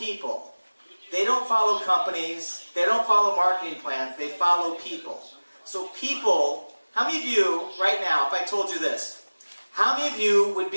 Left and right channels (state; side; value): inverted; both; correlation -1.00